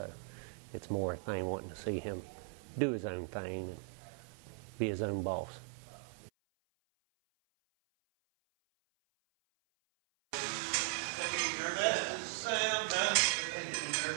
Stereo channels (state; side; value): silent; left; 52 dB below the other